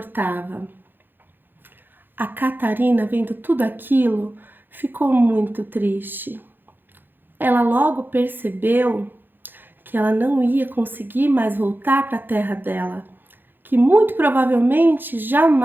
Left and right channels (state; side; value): late; left; 0.095 ms